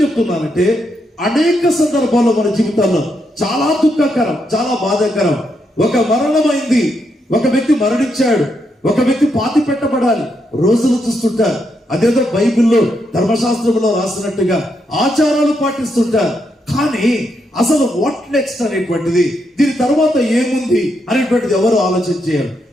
చెప్తున్నానంటే అనేక సందర్భాల్లో మన జీవితాల్లో చాలా దుఃఖకరం, చాలా బాధాకరం. ఒక మరణమైంది, ఒక వ్యక్తి మరణించాడు, ఒక వ్యక్తి పాతి పెట్టబడాలి, రోజులు చూస్తుంటారు. అదేదో బైబిల్లో ధర్మశాస్త్రంలో రాసినట్టుగా ఆచారాలు పాటిస్తుంటారు. కానీ అసలు వాట్ నెక్స్ట్ అనేటువంటిది, దీని తర్వాత ఏముంది అనేటువంటిది ఎవరు ఆలోచన చేయాలి.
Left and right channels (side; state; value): both; normal; correlation 0.80